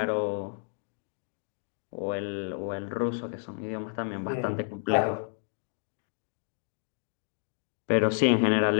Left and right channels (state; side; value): silent; right; digital silence